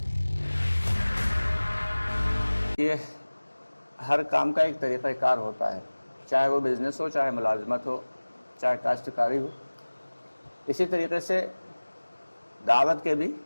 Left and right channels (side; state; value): both; inverted; correlation -1.00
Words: یہ ہر کام کا ایک طریقہ کار ہوتا ہے، چاہے وہ بزنس ہو، چاہے ملازمت ہو، چاہے کاشتکاری ہو۔ اسی طریقے سے دعوت کے بھی